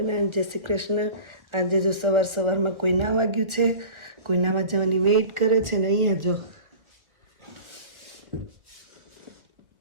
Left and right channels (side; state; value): left; late; 1.6 ms